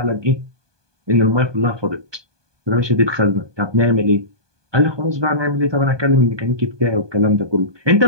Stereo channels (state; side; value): late; left; 1.2 ms